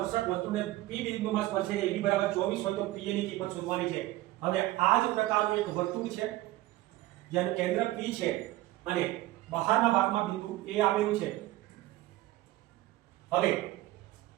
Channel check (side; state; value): left; quieter; 16.9 dB